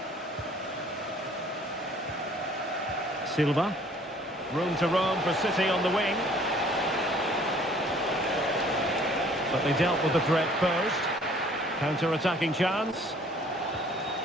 Silva. Room to roam for City on the wing. But they dealt with the threat posed. Counter-attacking chance.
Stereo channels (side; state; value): both; normal; correlation 0.56